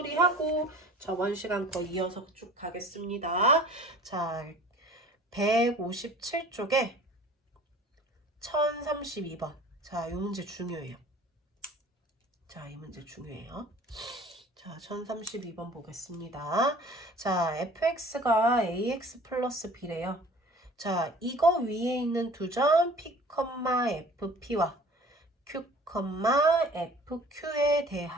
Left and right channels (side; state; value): both; normal; correlation 0.47